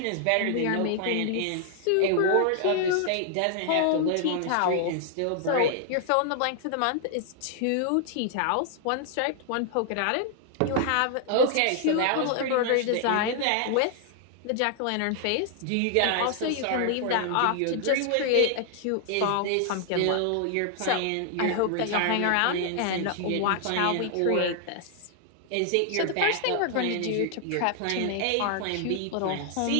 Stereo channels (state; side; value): different; both; correlation 0.00